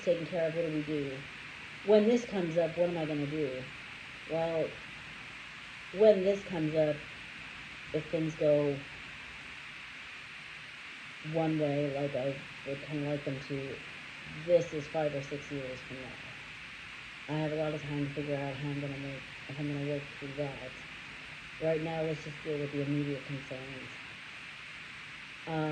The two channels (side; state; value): both; identical; correlation 1.00